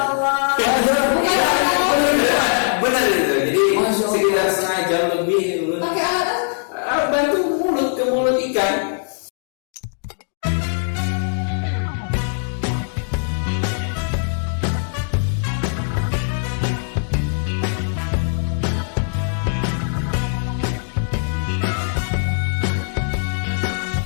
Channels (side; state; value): right; silent; digital silence